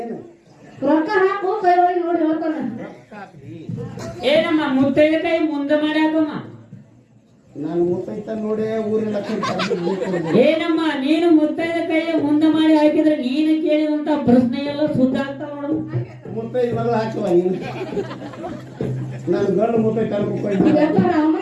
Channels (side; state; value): both; identical; correlation 1.00